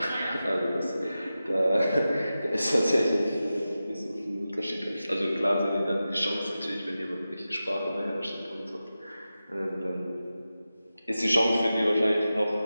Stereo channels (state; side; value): inverted; both; correlation -0.93